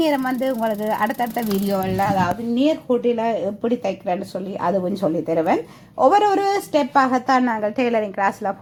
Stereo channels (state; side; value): identical; both; correlation 1.00